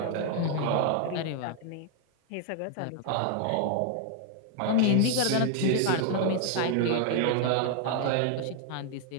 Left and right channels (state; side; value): different; both; correlation 0.00